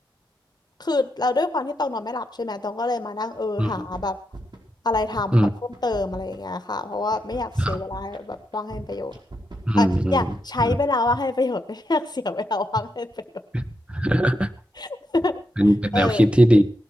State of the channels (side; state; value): both; normal; correlation 0.83